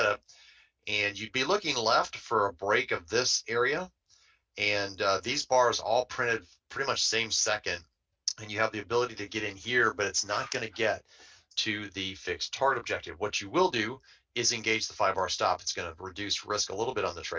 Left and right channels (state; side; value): identical; both; correlation 1.00